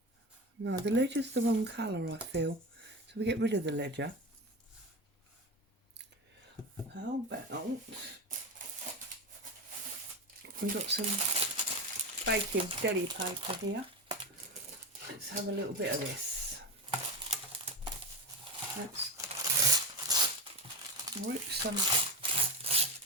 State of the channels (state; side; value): normal; both; correlation 0.20